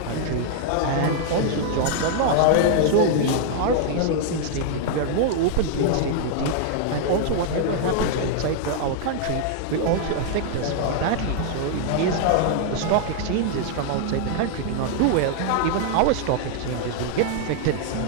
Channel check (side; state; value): both; different; correlation -0.01